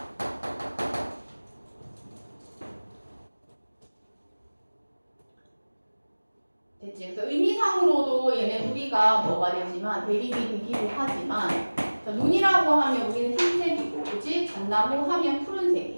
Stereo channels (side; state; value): both; inverted; correlation -1.00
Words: 됐지? 그래서 의미상으로도 얘네 둘이가 뭐가 되지만 대립이 되기도 하지만 자, 눈이라고 하면 우리는 흰색이고 그치? 잣나무 하면